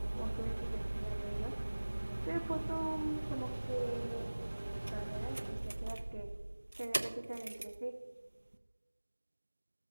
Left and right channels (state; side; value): inverted; both; correlation -1.00